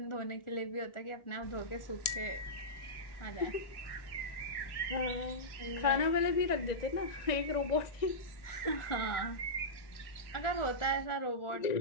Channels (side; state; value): right; late; 1.8 ms